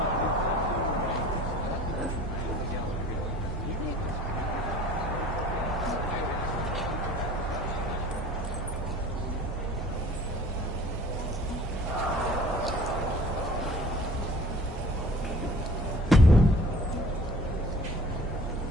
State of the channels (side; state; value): both; normal; correlation 0.47